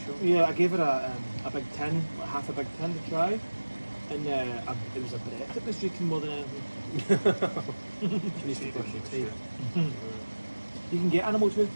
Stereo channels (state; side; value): inverted; both; correlation -1.00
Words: chunk. yeah, I gave her a big tin, like half a big tin to try. And it was a breath that was drinking more than anything. She needs to brush your teeth. You can get animal